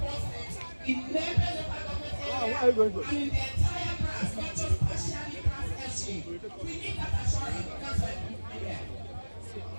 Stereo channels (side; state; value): both; inverted; correlation -1.00